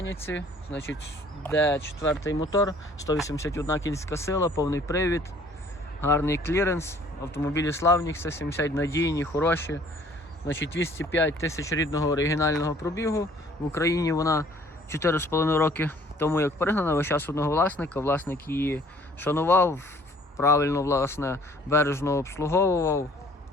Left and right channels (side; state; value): both; normal; correlation 0.57